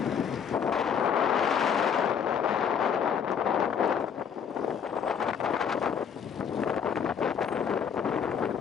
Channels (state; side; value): quieter; right; 7.5 dB